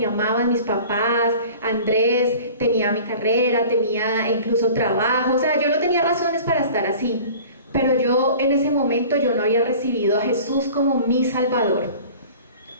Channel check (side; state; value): both; inverted; correlation -0.43